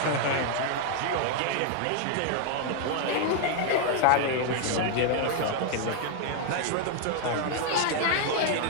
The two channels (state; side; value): different; both; correlation 0.00